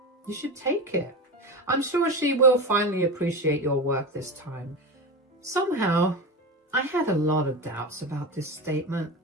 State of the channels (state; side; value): normal; both; correlation 0.23